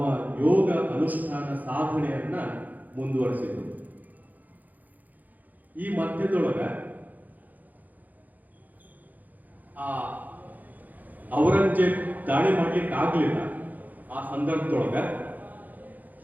ಯೋಗ ಅನುಷ್ಠಾನ ಸಾಧನೆಯನ್ನ ಮುಂದುವರಿಸಿದರು. ಈ ಮಧ್ಯದೊಳಗ ಆ ಔರಂಗಜೇಬ್ ದಾಳಿ ಮಾಡ್ಲಿಕ್ಕೆ ಆಗ್ಲಿಲ್ಲ. ಆ ಸಂದರ್ಭದೊಳಗ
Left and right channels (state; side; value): late; left; 0.082 ms